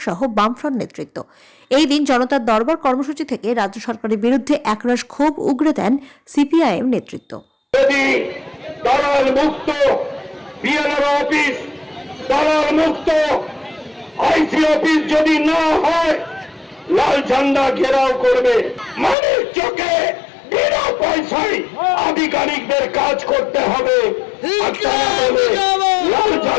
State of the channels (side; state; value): right; drops out; at 19.2 s